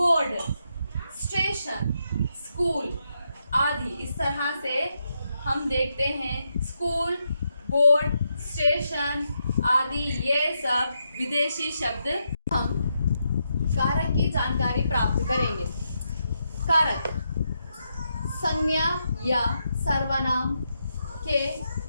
स्टेशन, स्कूल आदि इस तरह से हम देखते हैं स्कूल, बोर्ड, स्टेशन आदि ये सब विदेशी शब्द। हम कारक की जानकारी प्राप्त करेंगे। कारक संज्ञा या सर्वनाम के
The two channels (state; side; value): inverted; both; correlation -0.82